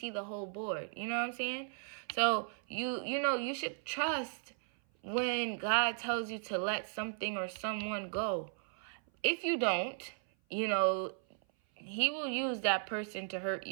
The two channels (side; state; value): left; silent; 54 dB below the other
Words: the whole board. You know what I'm saying? So you should trust when God tells you to let something or someone go. If you don't, he will use that person to hurt